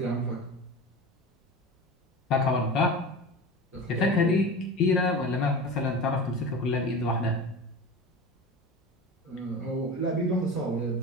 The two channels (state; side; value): normal; both; correlation 0.31